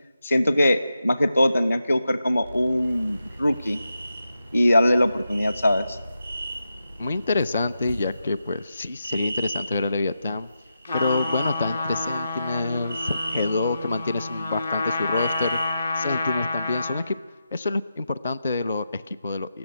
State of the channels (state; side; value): inverted; both; correlation -0.88